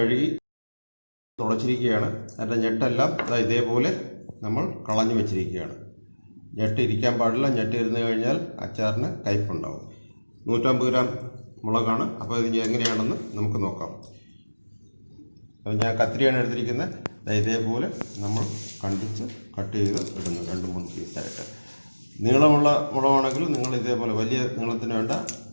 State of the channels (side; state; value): both; inverted; correlation -1.00